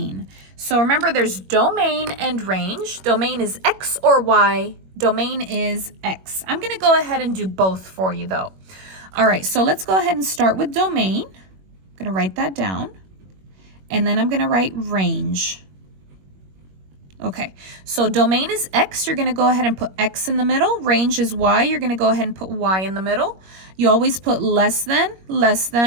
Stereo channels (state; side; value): late; left; 21 ms